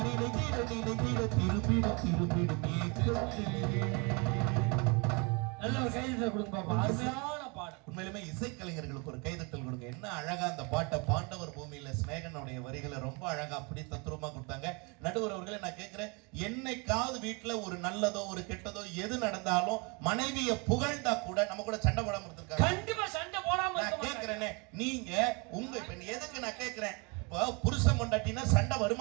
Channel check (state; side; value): quieter; left; 30.7 dB